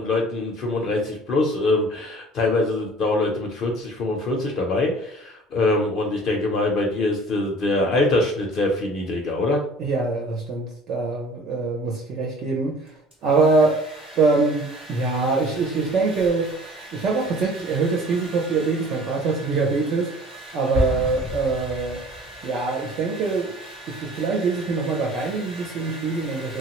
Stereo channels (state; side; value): normal; both; correlation 0.48